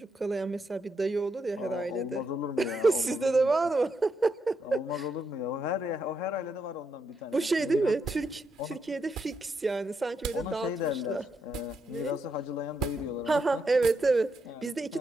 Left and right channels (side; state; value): both; normal; correlation 0.80